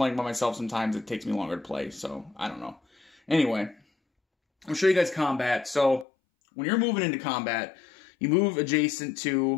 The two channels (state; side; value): drops out; right; at 6.1 s